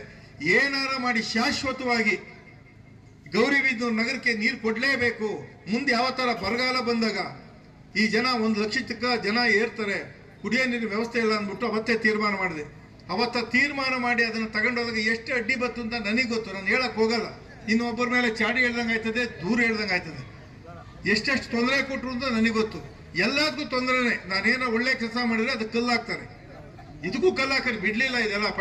ಏನಾರ ಮಾಡಿ ಶಾಶ್ವತವಾಗಿ ಗೌರಿಬಿದನೂರು ನಗರಕ್ಕೆ ನೀರು ಕೊಡಲೇಬೇಕು. ಮುಂದೆ ಯಾವ ಥರ ಬರಗಾಲ ಬಂದಾಗ ಈ ಜನ 1 ಲಕ್ಷ ಜನ ಏರ್ತಾರೆ, ಕುಡಿಯೋ ನೀರಿನ ವ್ಯವಸ್ಥೆ ಇಲ್ಲ ಅಂದ್ಬಿಟ್ಟು ಅವತ್ತೇ ತೀರ್ಮಾನ ಮಾಡಿದೆ. ಅವತ್ತ ತೀರ್ಮಾನ ಮಾಡಿ ಅದನ್ನು ತಗೊಂಡೋದಾಗ ಎಷ್ಟು ಅಡ್ಡಿ ಬತ್ತು ಅಂತ ನನಗೆ ಗೊತ್ತು, ನಾನು ಹೇಳಕ್ ಹೋಗಲ್ಲ. ಇನ್ನೊಬ್ಬರ ಮೇಲೆ ಚಾಡಿ ಹೇಳ್ದಂಗೆ ಆಯ್ತದೆ, ದೂರ ಹೇಳ್ದಂಗೆ ಆಯ್ತದೆ. ಎಷ್ಟೆಷ್ಟು ತೊಂದರೆ ಕೊಟ್ಟರು ಅಂತ ನನಗೆ ಗೊತ್ತು. ಎಲ್ಲದಕ್ಕೂ ತೊಂದರೆನೇ. ನಾನೇನೋ ಒಳ್ಳೆ ಕೆಲಸ ಮಾಡಿದ್ರೆ ಅದಕ್ಕೆ ಕಲ್ಲು ಹಾಕ್ತಾರೆ, ಇದಕ್ಕೂ ಕಲ್ಲು ಹಾಕಿ ಬಿಡ್ಲಿಲ್ಲ. ಇದೆಲ್ಲ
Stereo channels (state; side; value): identical; both; correlation 1.00